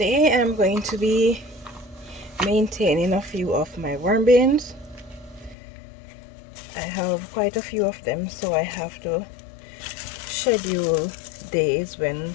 I'm going to be maintaining a few of my worm bins. I have quite a few of them, so I have to schedule days when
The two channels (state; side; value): drops out; right; at 5.6 s